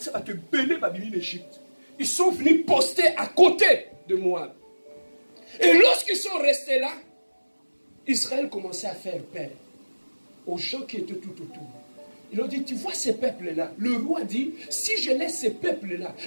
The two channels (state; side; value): inverted; both; correlation -1.00